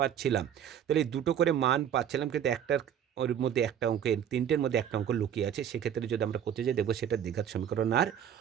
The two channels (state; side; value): quieter; left; 9.3 dB